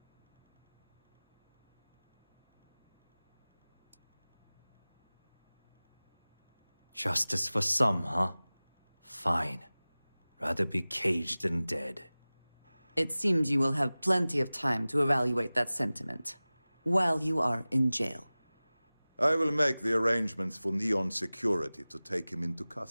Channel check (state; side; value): inverted; both; correlation -0.98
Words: Justice for some, huh? Fine. Rather be caged than dead. It seems you will have plenty of time to evaluate that sentiment while you are in jail. I will make the arrangements for Neon Security to take him into